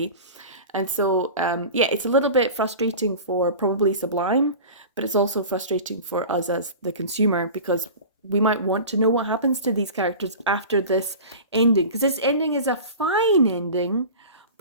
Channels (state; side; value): inverted; both; correlation -0.35